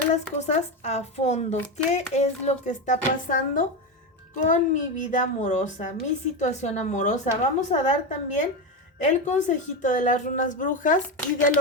las cosas a fondo. ¿Qué es lo que está pasando con mi vida amorosa, mi situación amorosa? Vamos a dar también el consejito de las runas brujas y del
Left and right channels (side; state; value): both; normal; correlation 0.15